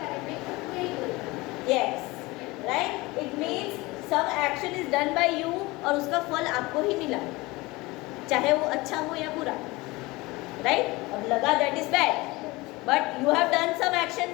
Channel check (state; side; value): quieter; right; 22.1 dB